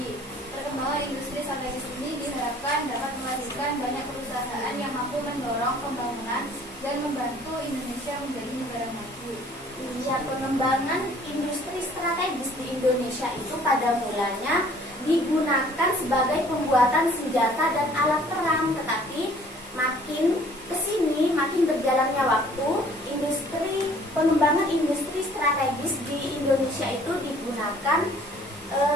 Perkembangan industri strategis ini diharapkan dapat melahirkan banyak perusahaan yang mampu mendorong pembangunan dan membantu Indonesia menjadi negara maju. Ya, pengembangan industri strategis di Indonesia itu pada mulanya digunakan sebagai pembuatan senjata dan alat perang, tetapi makin kesini, makin berjalannya waktu, pengembangan industri strategis di Indonesia itu digunakan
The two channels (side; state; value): both; normal; correlation 0.55